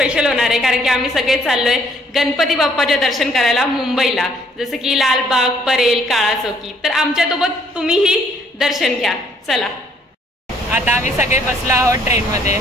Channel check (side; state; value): both; normal; correlation 0.64